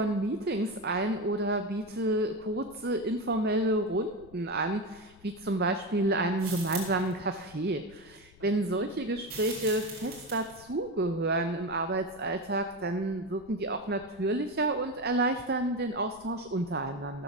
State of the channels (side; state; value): left; noise; rumble, 25 dB below the sound